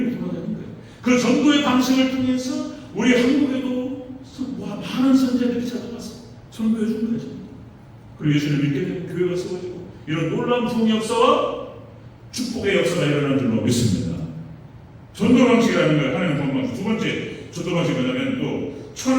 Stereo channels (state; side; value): identical; both; correlation 1.00